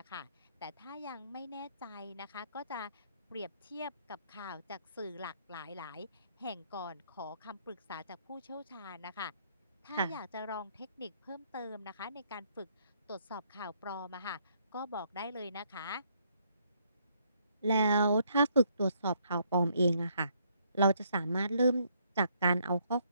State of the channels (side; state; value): both; inverted; correlation -0.70